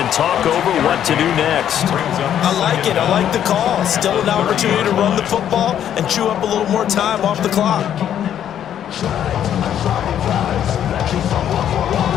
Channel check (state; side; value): quieter; right; 10.1 dB